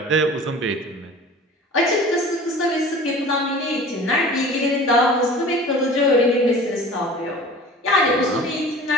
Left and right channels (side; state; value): both; normal; correlation 0.41